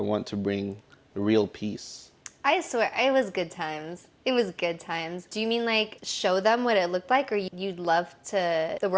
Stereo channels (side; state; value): both; identical; correlation 1.00